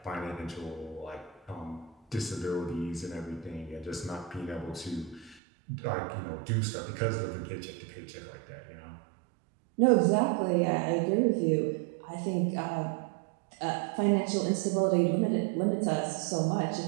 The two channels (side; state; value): left; drops out; at 5.4 s